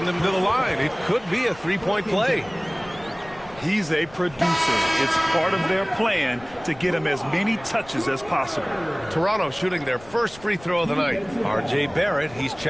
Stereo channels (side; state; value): left; noise; rumble, 22 dB below the sound